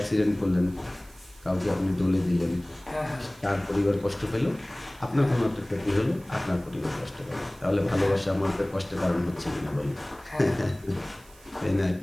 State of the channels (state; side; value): noise; right; hiss, 25 dB below the sound